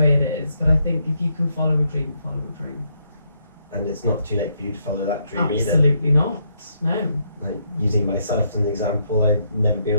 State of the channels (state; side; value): inverted; both; correlation -0.76